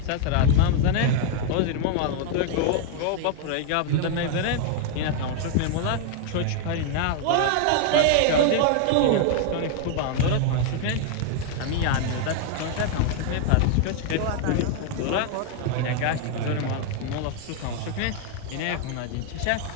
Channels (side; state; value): both; different; correlation 0.00